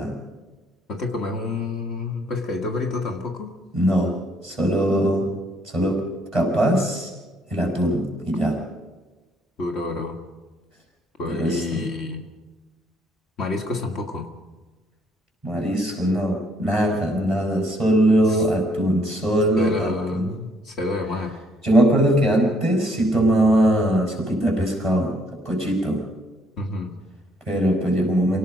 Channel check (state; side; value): normal; both; correlation 0.68